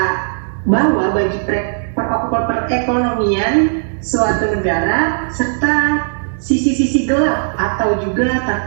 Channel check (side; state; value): left; silent; digital silence